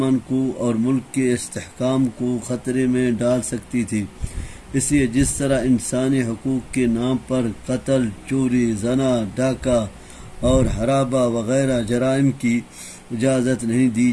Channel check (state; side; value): identical; both; correlation 1.00